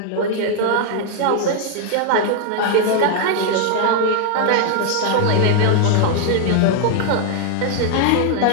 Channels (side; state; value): both; different; correlation 0.00